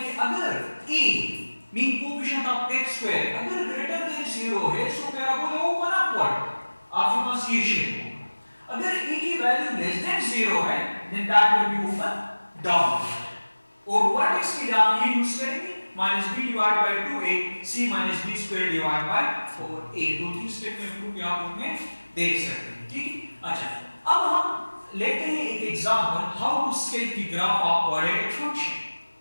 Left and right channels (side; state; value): both; inverted; correlation -1.00